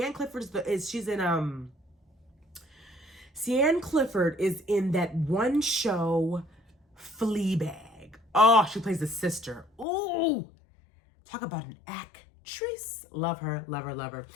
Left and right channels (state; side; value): drops out; right; at 9.9 s